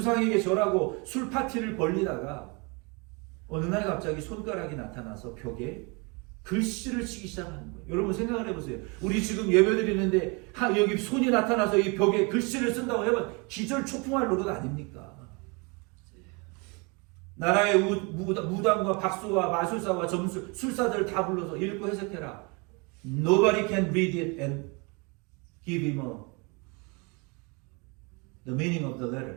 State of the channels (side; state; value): left; quieter; 29.3 dB